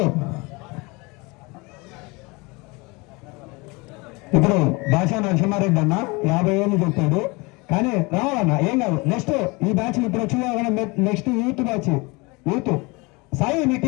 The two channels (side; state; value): right; quieter; 26.1 dB